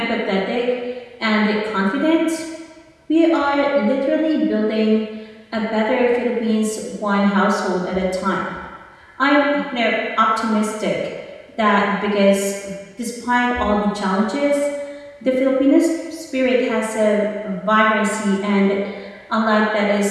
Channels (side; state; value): both; identical; correlation 1.00